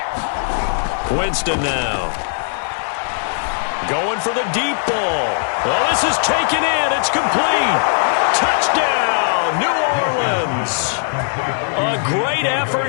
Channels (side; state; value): right; silent; digital silence